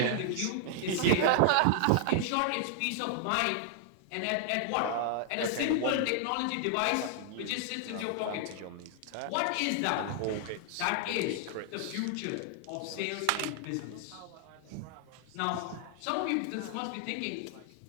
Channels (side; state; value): both; different; correlation 0.00